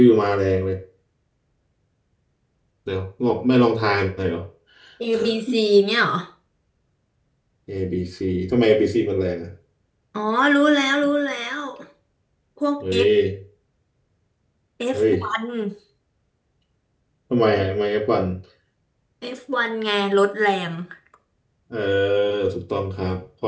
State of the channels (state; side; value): identical; both; correlation 1.00